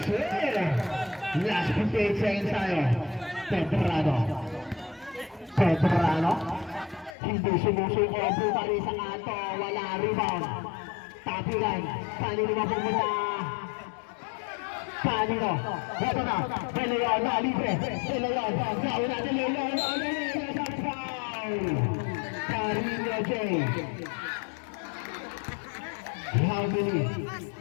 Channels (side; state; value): right; drops out; at 7.2 s